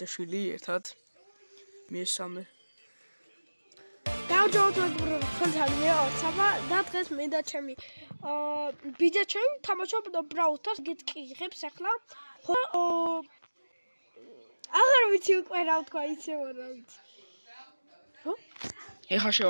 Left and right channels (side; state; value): both; inverted; correlation -1.00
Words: ერთად. მესამე. გამარჯობა მეგობრებო, თქვენთან ვარ საბა და დღეს მე და ჩემი ბიძაჩემი თამაშობ Brawl Stars გეტყიღებს ახლა. ხო აღარ ვიცი უკვე რა ვთქვა, იცი რა ვიცი. ხო? ეხლა